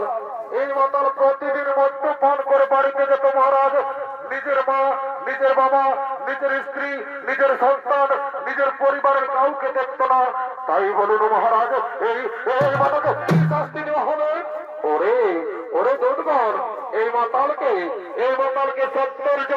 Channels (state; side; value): identical; both; correlation 1.00